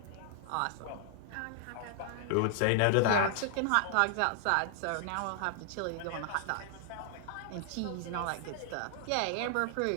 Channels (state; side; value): different; both; correlation 0.00